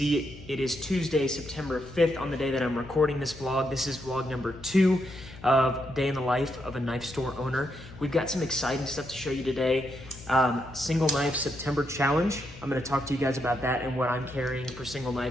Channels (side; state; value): left; noise; hum, 17 dB below the sound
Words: It is Tuesday, September 5th on the day that I'm recording this vlog. This is vlog number 2 of Day in the Life of a Knife Store Owner. We've got some exciting stuff to show you today. Single Knife September Challenge. I'm going to talk to you guys about that and what I'm carrying for Single